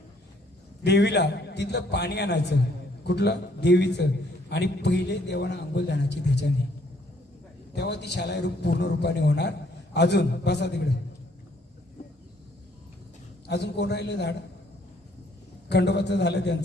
देवीला, तिथलं पाणी आणायचं, कुठलं देवीचं, आणि पहिले देवाना अंघोळ जाण्याची त्याच्याने, तेव्हा ती शालाई रूप पूर्ण रूपाने होणार. अजून बसा तिकडे. अजून कोण राहिलं झाड? खंडोबाचं झालं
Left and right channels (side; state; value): both; normal; correlation 0.65